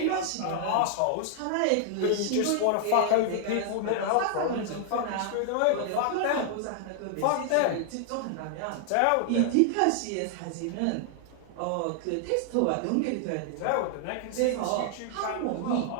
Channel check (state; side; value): different; both; correlation 0.00